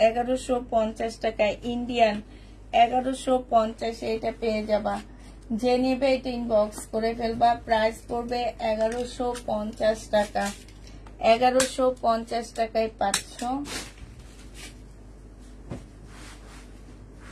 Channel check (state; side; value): identical; both; correlation 1.00